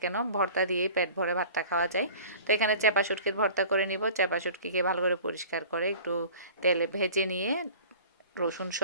কেন, ভর্তা দিয়েই পেট ভরে ভাতটা খাওয়া যায়। তো এখানে চাপা শুটকির ভর্তা করে নিব। চাপা শুটকিকে ভালো করে পরিষ্কার করে একটু তেলে ভেজে নিয়ে রসুন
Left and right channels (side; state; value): both; inverted; correlation -0.44